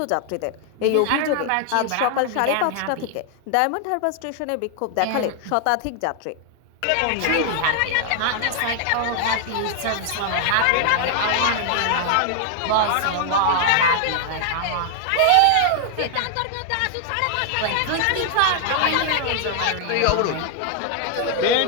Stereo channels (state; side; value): different; both; correlation 0.00